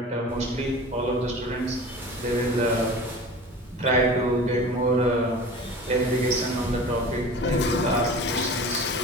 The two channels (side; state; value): both; normal; correlation 0.38